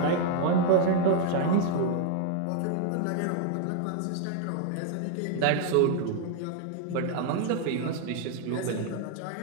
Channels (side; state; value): both; different; correlation 0.00